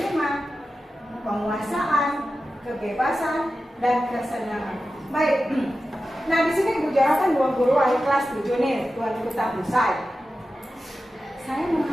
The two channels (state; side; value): normal; both; correlation 0.93